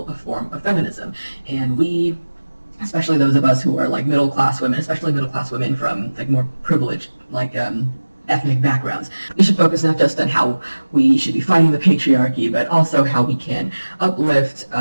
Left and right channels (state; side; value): inverted; both; correlation -1.00